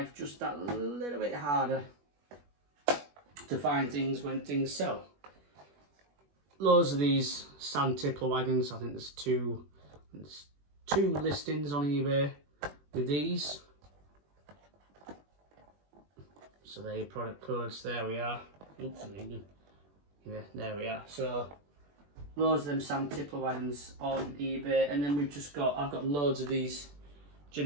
just that little bit harder to find things when things sell. Loads of these sand tippler wagons. I think there's two listings on eBay with these. So there are your product codes, there we are. Oops, yeah, there we are. So loads of them sand tippler wagons on eBay, and then I've got loads of these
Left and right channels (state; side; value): late; left; 21 ms